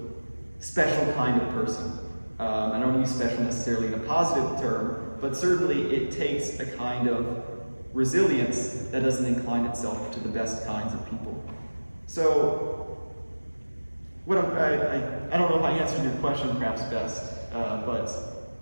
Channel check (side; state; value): both; inverted; correlation -1.00